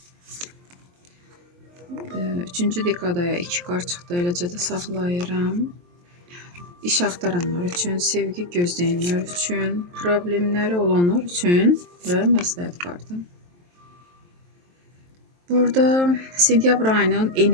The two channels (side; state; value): left; late; 23 ms